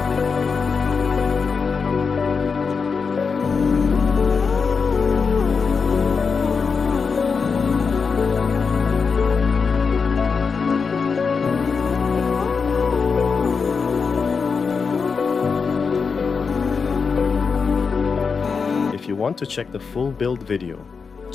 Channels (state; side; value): quieter; right; 5.3 dB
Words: If you want to check the full build video,